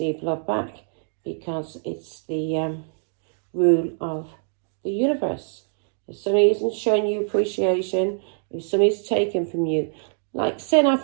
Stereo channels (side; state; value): left; silent; digital silence